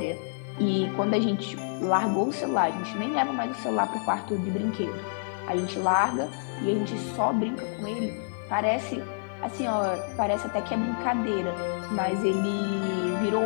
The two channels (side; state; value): right; silent; digital silence